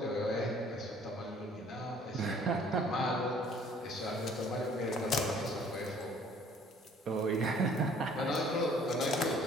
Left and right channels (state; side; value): normal; both; correlation 0.56